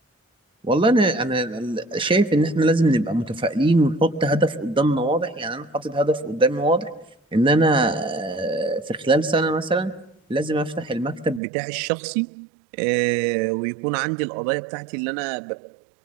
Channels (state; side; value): drops out; left; at 11.4 s